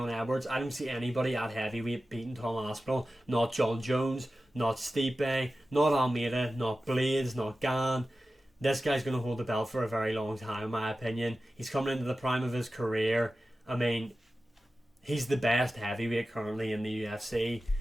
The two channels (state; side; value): normal; both; correlation 0.94